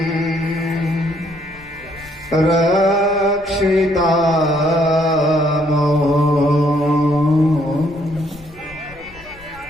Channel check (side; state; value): left; noise; rumble, 22 dB below the sound